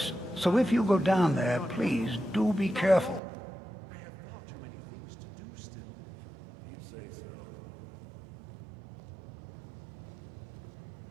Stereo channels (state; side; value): drops out; left; at 3.2 s